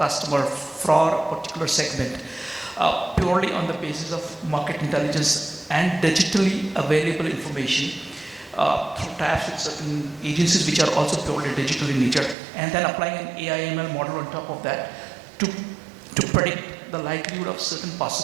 for a particular segment, purely on the basis of market intelligence and digitally available information through tabs with certain agencies which are also purely digital in nature, and then applying an AI/ML model on top of that to predict the likelihood of certain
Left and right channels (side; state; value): left; drops out; at 12.4 s